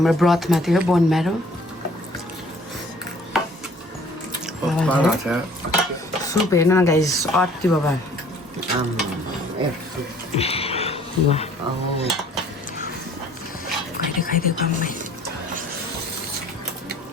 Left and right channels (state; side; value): normal; both; correlation 0.55